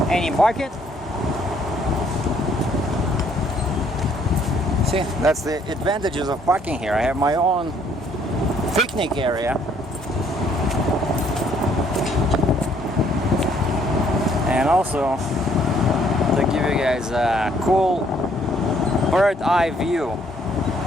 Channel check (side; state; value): both; normal; correlation 0.65